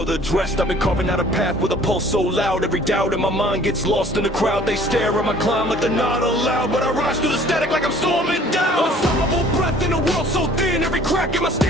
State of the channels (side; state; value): both; normal; correlation 0.53